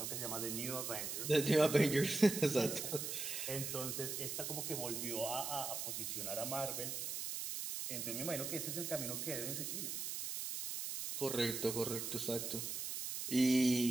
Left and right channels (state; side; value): noise; right; hiss, 4 dB below the sound